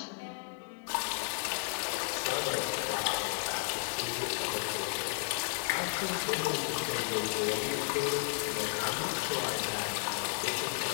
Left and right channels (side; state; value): right; silent; 56 dB below the other